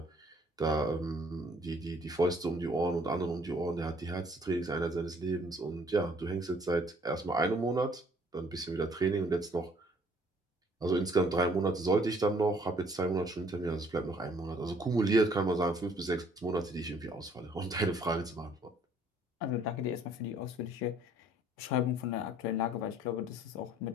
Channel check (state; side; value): normal; both; correlation 0.60